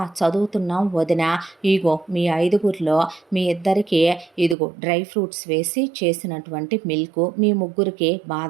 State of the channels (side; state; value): left; drops out; at 4.5 s